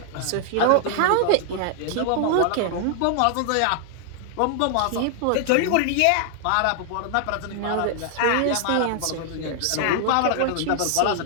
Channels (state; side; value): different; both; correlation 0.00